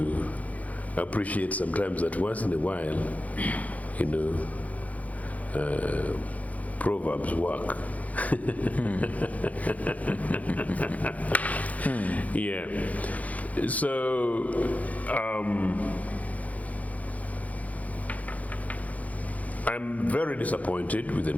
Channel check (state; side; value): late; right; 0.071 ms